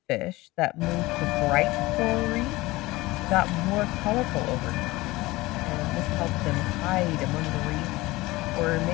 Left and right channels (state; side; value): quieter; right; 20.1 dB